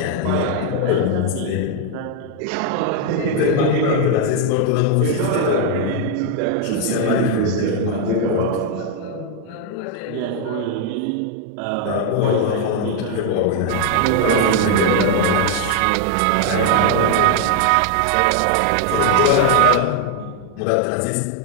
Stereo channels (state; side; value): different; both; correlation 0.01